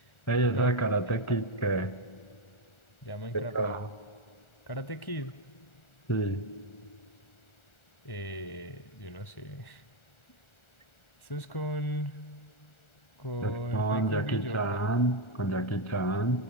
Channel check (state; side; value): late; right; 1.4 ms